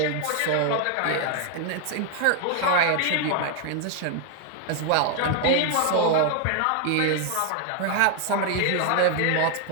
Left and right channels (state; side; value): different; both; correlation 0.00